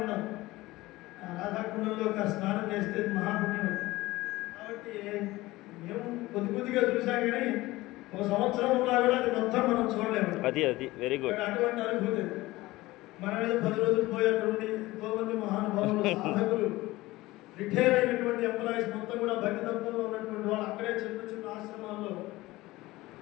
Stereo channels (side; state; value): right; quieter; 18.9 dB